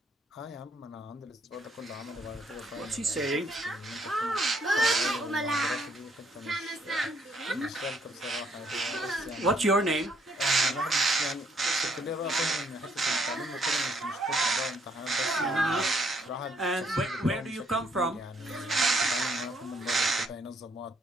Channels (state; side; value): normal; both; correlation 0.69